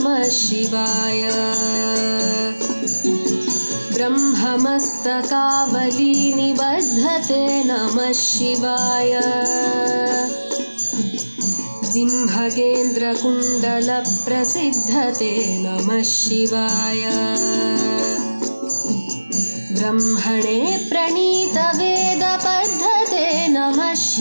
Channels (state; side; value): inverted; both; correlation -1.00